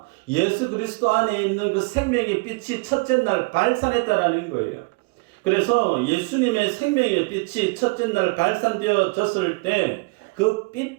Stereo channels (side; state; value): left; quieter; 27.9 dB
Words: 예수 그리스도 안에 있는 그 생명의 빛이 첫째 날 발산했다라는 거예요. 그래서 예수님의 생명의 빛이 첫째 날 발산되어졌을 때 그 빛